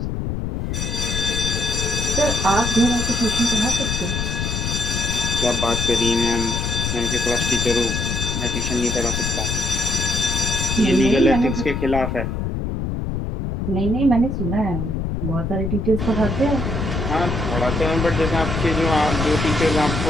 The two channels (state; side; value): noise; left; rumble, 2 dB below the sound